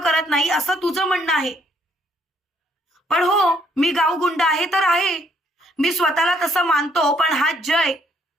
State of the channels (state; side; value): normal; both; correlation 0.68